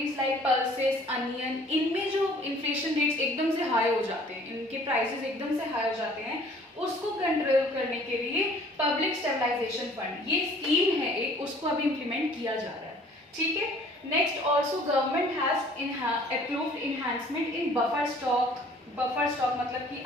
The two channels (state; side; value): normal; both; correlation 0.54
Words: like pulses, onion, इनमें जो इन्फ्लेशन रेट्स एकदम से हाई हो जाते हैं, इनके प्राइसेस एकदम से हाई हो जाते हैं, उसको कंट्रोल करने के लिए पब्लिक स्टेबलाइजेशन फंड ये स्कीम है एक, उसको अभी इम्प्लीमेंट किया जा रहा है, ठीक है। Next also government has approved enhancement in buffer stock मतलब कि